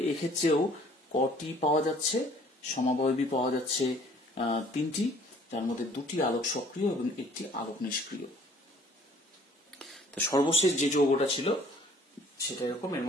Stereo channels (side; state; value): both; normal; correlation 0.56